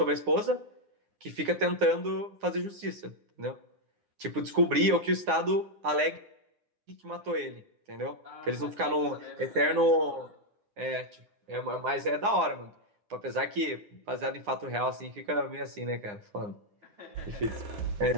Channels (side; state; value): left; late; 9.7 ms